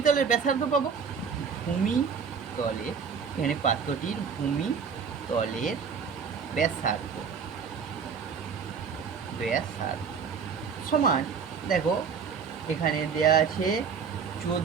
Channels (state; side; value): quieter; left; 6.3 dB